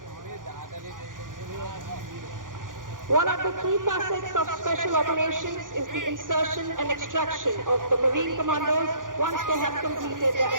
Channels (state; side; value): late; left; 0.89 ms